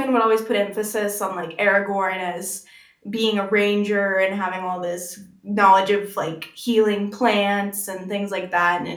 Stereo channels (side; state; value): both; identical; correlation 1.00